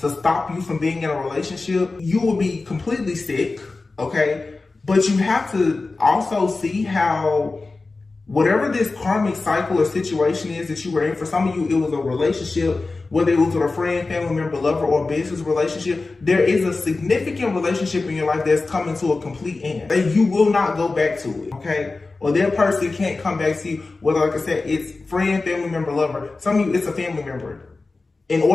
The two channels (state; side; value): quieter; right; 3.6 dB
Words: stop you from being in a relationship, you will be completely sick, okay? But you have to also see how whatever this karmic cycle or situation is that you were in, for some of you, it was a relationship, whether it was with a friend, family member, lover, or business relationship, there is a significant relationship in your life that's coming to a complete end. And you will not go back to it, okay? Or that person can't come back to you, whether, like I said, it's friend, family member, lover. Some of you, it's a family member. In